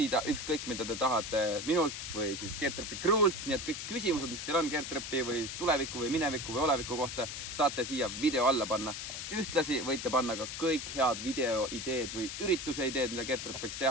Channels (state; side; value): noise; left; hiss, 6 dB below the sound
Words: ükskõik, mida te tahate minult või siis Getropi crew'lt. Nii et kõik küsimused, mis teil on Getropi või tuleviku või mineviku või oleviku kohta, saate siia video alla panna. Ühtlasi võite panna ka kõik head videoideed või ürituse ideed, mida Getrop võiks